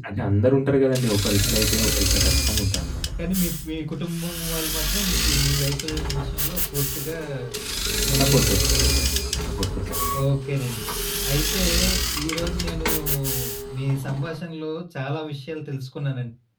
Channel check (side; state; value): both; identical; correlation 1.00